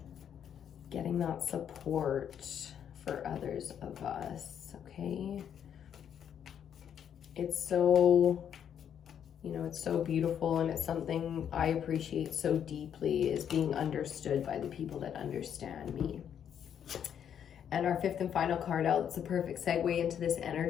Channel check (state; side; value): quieter; right; 8.8 dB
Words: Getting that support for others of us, okay? It's so, you know, it's so beautiful, and it's something I appreciate so deeply, is being understood by the people that understand me. And our fifth and final card out, it's a perfect segue into this